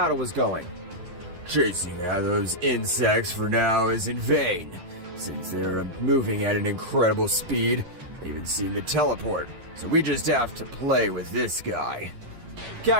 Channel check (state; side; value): late; left; 11 ms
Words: was going. Chasing after those insects for now is in vain, since they're moving at an incredible speed. They even seem to teleport, so we just have to play with this guy.